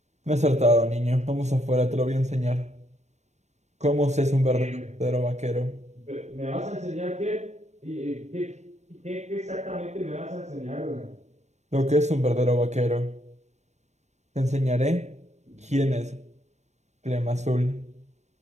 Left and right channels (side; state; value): left; late; 0.33 ms